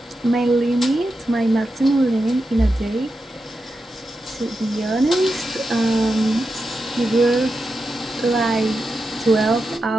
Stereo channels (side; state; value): both; normal; correlation 0.89